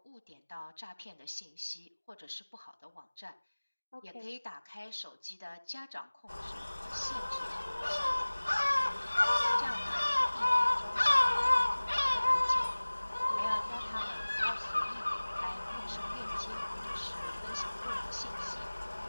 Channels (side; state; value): both; inverted; correlation -1.00